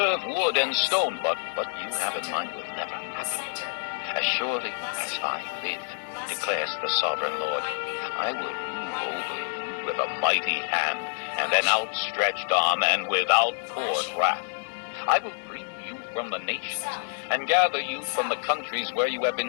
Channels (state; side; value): silent; right; digital silence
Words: wood and stone, but what you have in mind will never happen. As surely as I live, declares the sovereign Lord, I will rule over you with a mighty hand and an outstretched arm and with outpoured wrath. I will bring you from the nations and gather you from the countries where you have